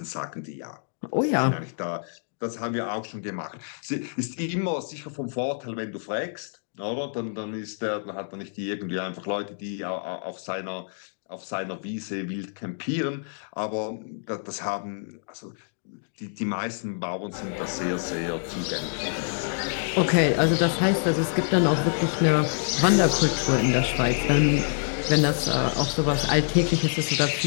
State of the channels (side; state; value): right; silent; digital silence